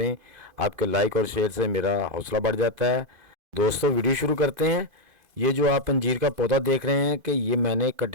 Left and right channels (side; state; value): left; late; 2.5 ms